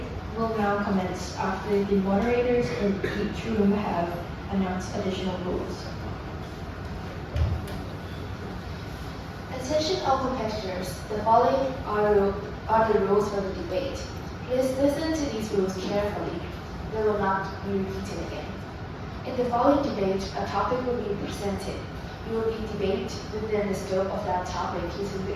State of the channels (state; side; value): identical; both; correlation 1.00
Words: will now commence after the moderators in each room have announced additional rules. Attention all competitors, the following are the rules for the debate. Please listen to these rules carefully. They will not be repeated again. In the following debate, a topic will be presented. You will be debated within the scope of that topic using the